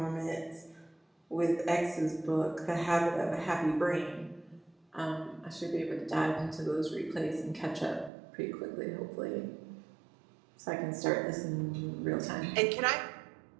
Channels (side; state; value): left; drops out; at 8.1 s